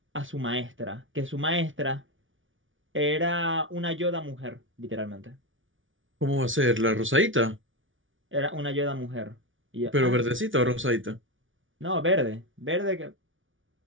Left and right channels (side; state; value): left; late; 0.57 ms